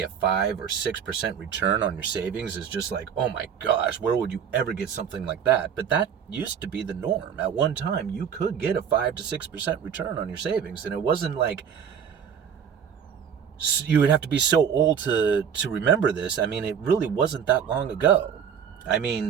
a 5 or 6% return on your savings is just like, oh my gosh, where would you ever get something like that? But that used to be the norm. At one time, you could get a 5 to 6% return on your savings, and it wasn't like you would have to be so old to remember this. I mean, it really wasn't that long ago. I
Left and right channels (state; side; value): quieter; left; 7.8 dB